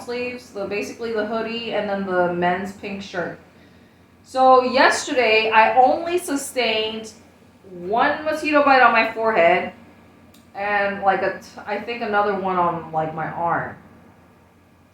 sleeves, basically the hoodie and then the men's pink shirt. So yesterday I only sustained one mosquito bite on my forehead, and like I think another one on like my arm.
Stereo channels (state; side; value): identical; both; correlation 1.00